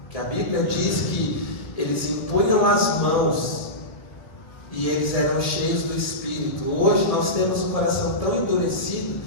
que a Bíblia diz que eles impunham as mãos e eles eram cheios do Espírito. Hoje nós temos o coração tão endurecido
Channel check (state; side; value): late; right; 1.7 ms